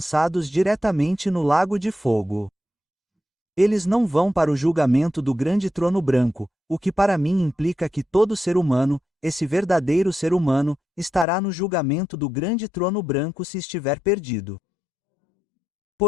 diretamente no lago de fogo. Eles não vão para o julgamento do grande trono branco, o que para mim implica que todo ser humano, esse verdadeiro ser humano, estará no julgamento do grande trono branco se estiver perdido.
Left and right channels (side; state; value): right; drops out; at 11.2 s